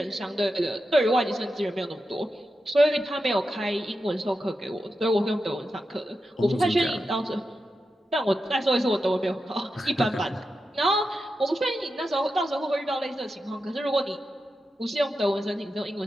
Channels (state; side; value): normal; both; correlation 0.89